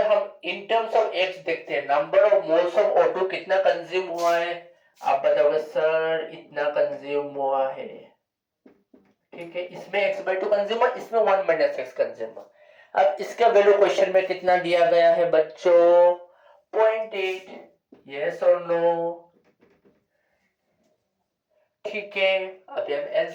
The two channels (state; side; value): identical; both; correlation 1.00